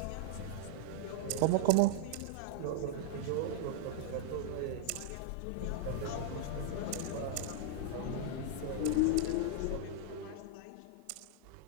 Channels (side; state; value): both; different; correlation -0.01